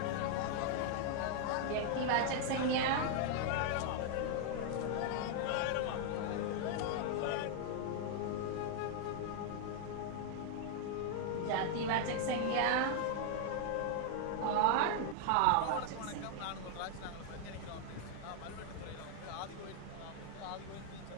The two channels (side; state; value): both; different; correlation 0.00